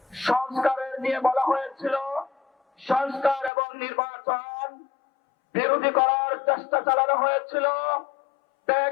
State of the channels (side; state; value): right; drops out; at 3.5 s